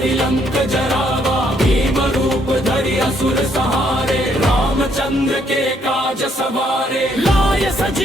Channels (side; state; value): both; normal; correlation 0.70